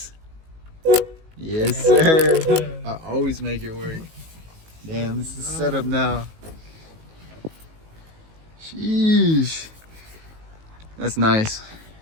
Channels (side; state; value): left; late; 19 ms